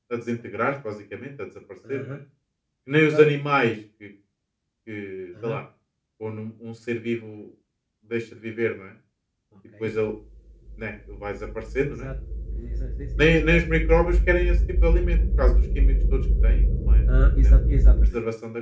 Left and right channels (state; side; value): identical; both; correlation 1.00